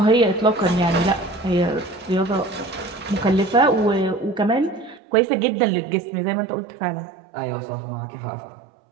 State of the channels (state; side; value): drops out; left; at 5.0 s